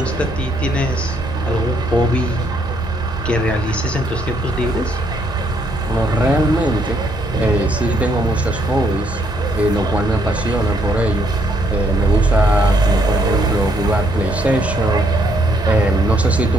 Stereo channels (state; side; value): normal; both; correlation 0.71